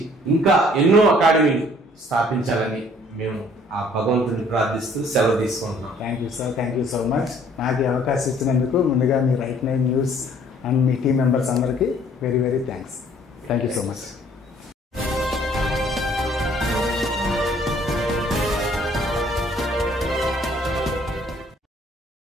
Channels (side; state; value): both; normal; correlation 0.59